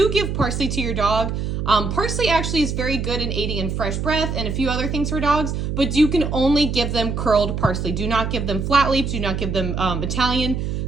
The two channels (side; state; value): right; noise; hum, 2 dB below the sound